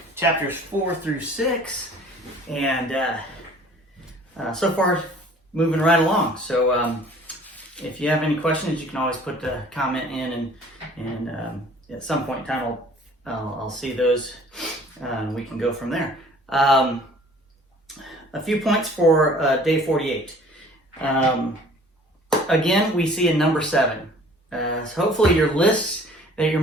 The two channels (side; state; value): both; normal; correlation 0.51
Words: chapters 4 through 6, and so far moving right along. So if you have any questions, you can always put the comment in, and at some point in time I'll see those, and we can go from there. A few points for day 48. Again, we see a number 7. So hopefully your lists that you're